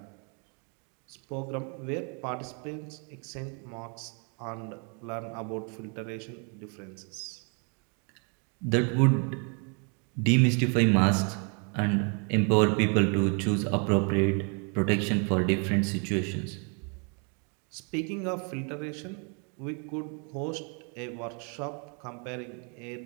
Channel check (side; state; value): left; quieter; 37.5 dB